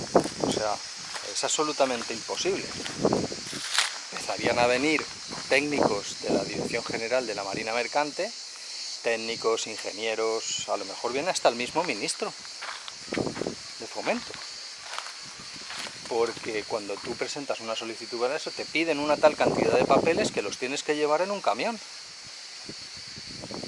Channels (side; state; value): both; identical; correlation 1.00